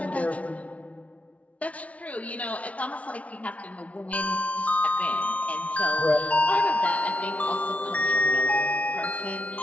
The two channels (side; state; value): right; late; 0.066 ms